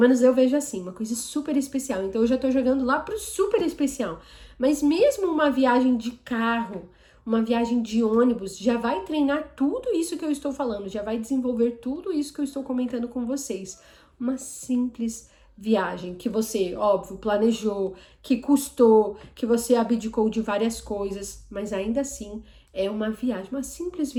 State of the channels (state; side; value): identical; both; correlation 1.00